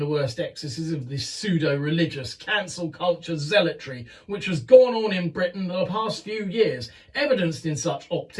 worst excesses of this pseudo-religious cancel culture zealotry which has gone on in Britain the past few years, evidenced in such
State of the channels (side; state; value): both; identical; correlation 1.00